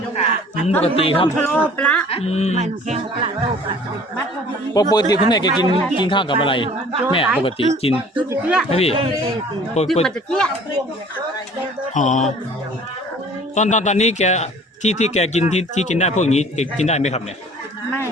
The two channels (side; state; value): both; normal; correlation 0.49